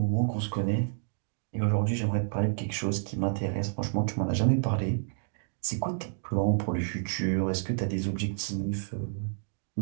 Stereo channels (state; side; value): silent; left; digital silence